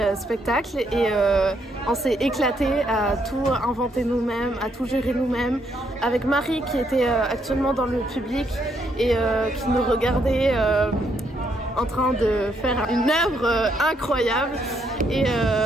spectacles et on s'est éclaté à tout inventer nous-mêmes, à tout gérer nous-mêmes avec Marie qui était actuellement dans le public et qui nous regardait en train de faire une œuvre incroyable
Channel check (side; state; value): both; normal; correlation 0.74